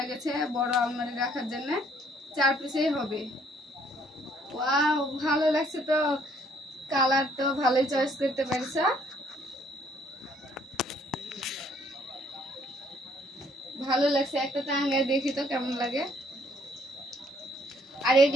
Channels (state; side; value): normal; both; correlation 0.64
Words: গেছে বড় আলমারি রাখার জন্য, 4 পিসেই হবে। ওয়াও, ভালো লাগছে তো। কালার তো ভালোই চয়েস করতে পারছো। ভালো লাগছে। একটা টাঙ্গায় দেখি তো কেমন লাগে। আর